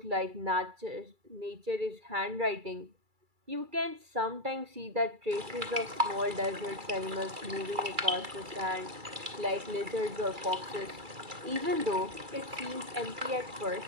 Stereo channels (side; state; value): left; late; 2.3 ms